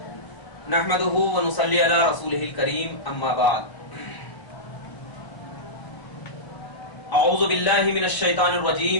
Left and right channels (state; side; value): late; right; 1.0 ms